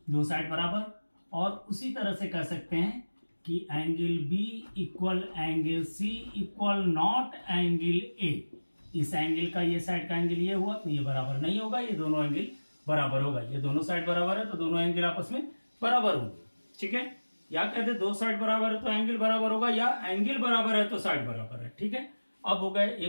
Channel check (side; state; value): both; inverted; correlation -1.00